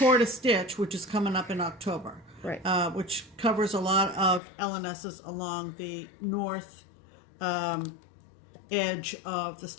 which is coming up in October. Right. Which covers a lot of L&S's along the north edge of the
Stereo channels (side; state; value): right; drops out; at 4.4 s